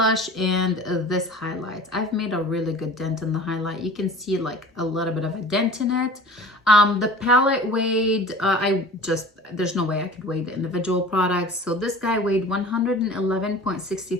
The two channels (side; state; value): both; normal; correlation 0.41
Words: and this highlight. I've made a really good dent in the highlight. You can see like a little bit of a dent in it. The palette weighed, there's no way I could weigh the individual products. So this guy weighed